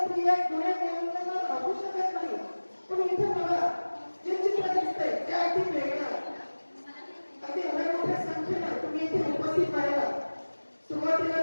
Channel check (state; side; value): inverted; both; correlation -1.00